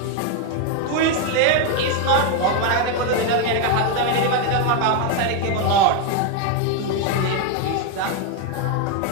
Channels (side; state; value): both; different; correlation 0.01